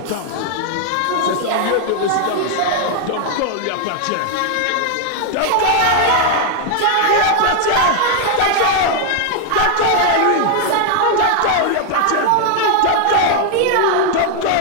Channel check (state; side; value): different; both; correlation 0.00